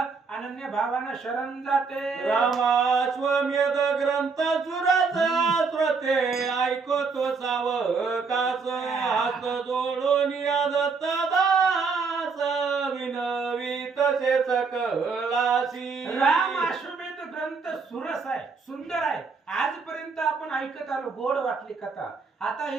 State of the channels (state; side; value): quieter; left; 4.9 dB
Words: भावानं शरण जाते. रामाश्वमेध ग्रंथ सुराचा श्रोते ऐकतो सावकास हात जोडून दत्त दास विनवी तसे सकलासी. राम अश्वमेध ग्रंथ सुरस आहे, सुंदर आहे. आजपर्यंत आपण ऐकत आलो, गोड वाटली कथा. आता